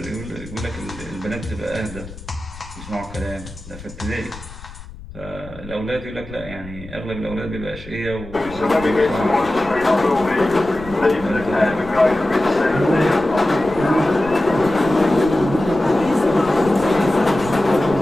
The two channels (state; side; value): noise; left; rumble, 16 dB below the sound